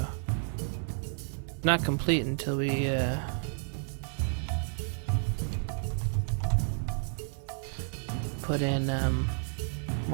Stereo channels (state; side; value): silent; left; digital silence